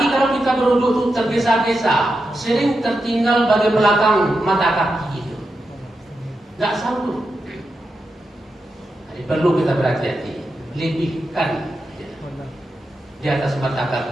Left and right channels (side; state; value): both; normal; correlation 0.88